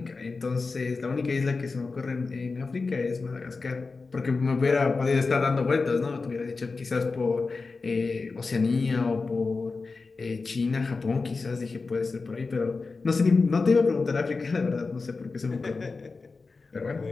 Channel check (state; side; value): quieter; right; 4.1 dB